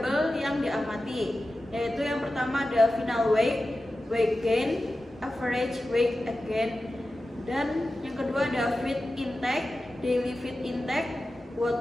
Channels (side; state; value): both; normal; correlation 0.94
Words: yang diamati, yaitu yang pertama ada final weight, weight gain, average weight gain, dan yang kedua ada feed intake, daily feed intake,